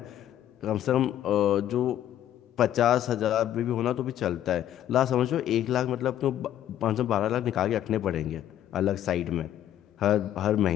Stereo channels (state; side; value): quieter; right; 11.6 dB